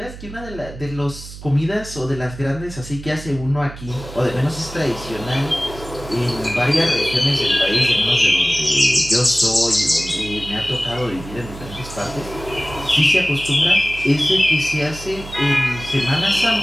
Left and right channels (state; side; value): noise; right; hum, 14 dB below the sound